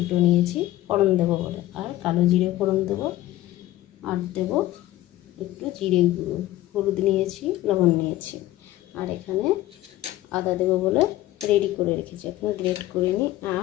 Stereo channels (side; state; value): right; quieter; 15.4 dB